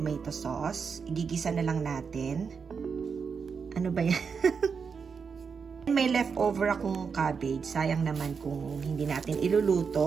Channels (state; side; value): quieter; left; 5.8 dB